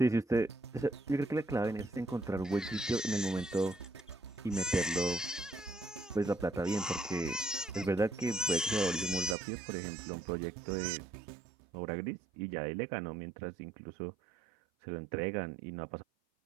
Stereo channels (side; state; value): left; drops out; at 9.3 s